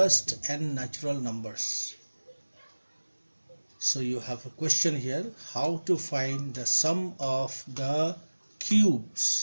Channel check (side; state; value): both; inverted; correlation -1.00